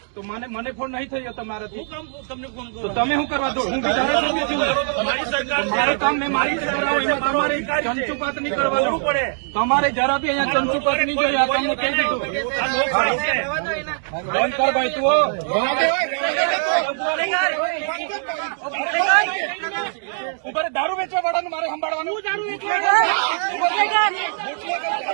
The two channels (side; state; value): left; silent; digital silence